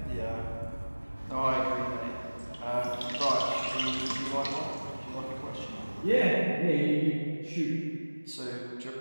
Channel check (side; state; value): both; inverted; correlation -1.00